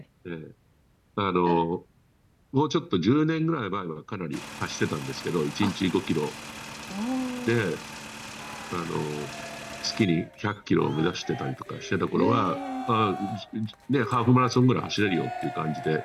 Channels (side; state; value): both; identical; correlation 1.00